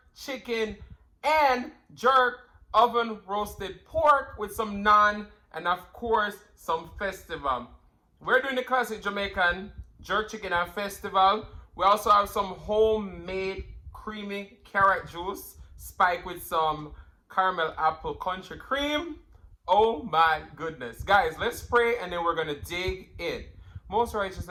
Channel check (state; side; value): identical; both; correlation 1.00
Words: chicken and jerk oven roasted pork with some naan and of course some festival. We're doing the classic Jamaican jerk chicken and festival. We also have some homemade creamy carrot juice spiked with some caramel apple country cream. Oh my goodness. Guys, let's pray and then we're going to dig in. Most righteous